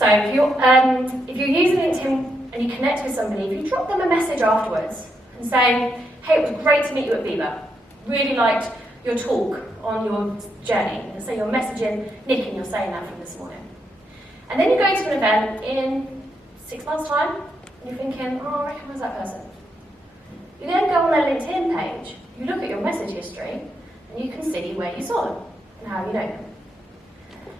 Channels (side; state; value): both; normal; correlation 0.80